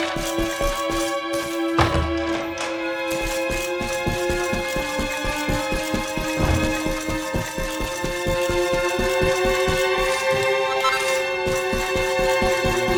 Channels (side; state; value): both; identical; correlation 1.00